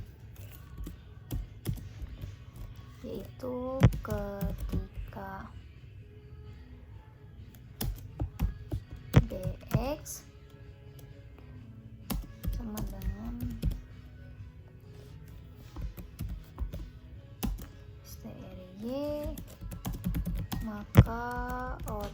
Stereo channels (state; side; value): identical; both; correlation 1.00